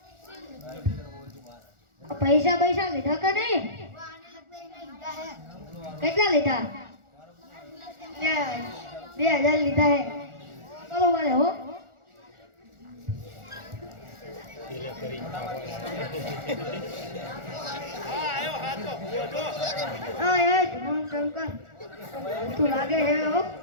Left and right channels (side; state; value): left; late; 1.4 ms